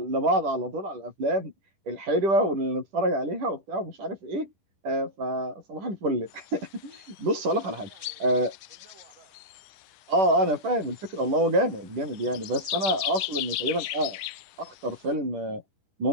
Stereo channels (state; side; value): late; left; 9.8 ms